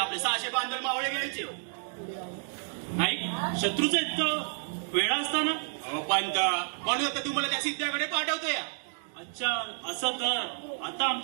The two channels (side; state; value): left; silent; digital silence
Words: 600 बांधल मावळे घ्यायचे. नाही, शत्रूचं इतकं वेळा असताना. अहो पंत, म्हणून आता तुम्हाला त्या सिद्ध्याकडे पाठवतोय. अच्छा, असं तर आता